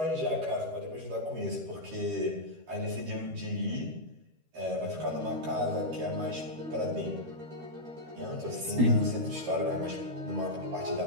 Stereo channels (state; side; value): late; left; 13 ms